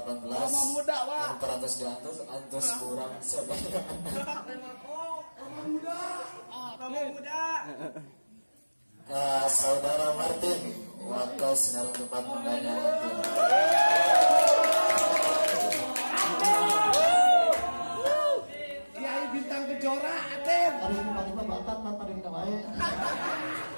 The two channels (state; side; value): inverted; both; correlation -1.00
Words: Muda, Pak. Yang teratas di antus kurang saudara. Muda. Saudara Martin, waktu sinar tempat mendanya. Kiai Bintang Kejora, Aten. Hari ini paling bakat tanpa kita baik.